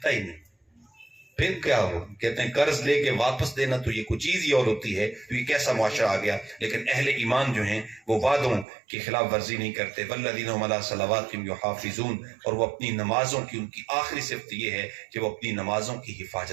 ہی نہیں. پھر کیا ہو؟ کہتے ہیں قرض لے کے واپس دینا تو یہ کچھ چیز ہی اور ہوتی ہے. تو یہ کیسا معاشرہ آ گیا. لیکن اہل ایمان جو ہیں وہ وعدوں کی خلاف ورزی نہیں کرتے. والذین هم علی صلواتہم یحافظون، اور وہ اپنی نمازوں کی، ان کی آخری صفت یہ ہے کہ وہ اپنی نمازوں کی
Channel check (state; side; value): drops out; left; at 8.7 s